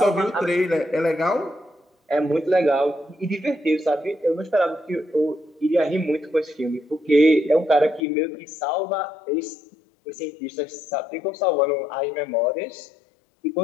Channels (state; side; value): drops out; right; at 8.1 s